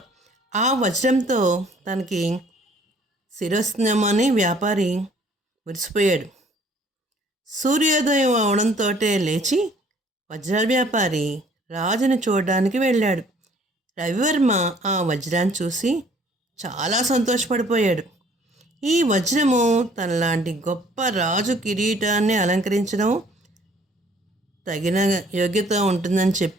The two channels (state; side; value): normal; both; correlation 0.58